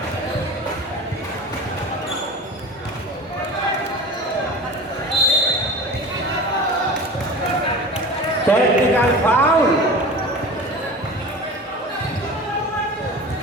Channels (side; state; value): both; normal; correlation 0.34